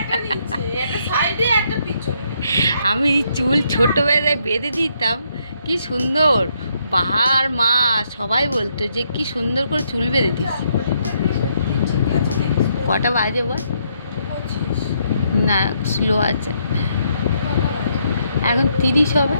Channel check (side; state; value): both; inverted; correlation -0.74